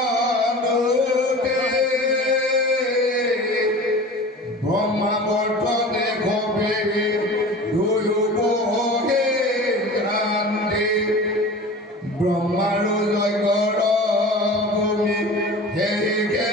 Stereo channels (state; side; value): normal; both; correlation 0.37